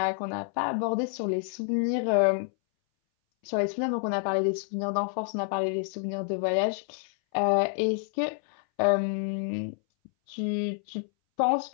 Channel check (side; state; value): right; silent; 59 dB below the other